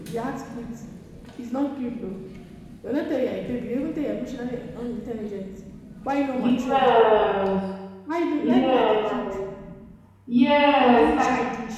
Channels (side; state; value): both; identical; correlation 1.00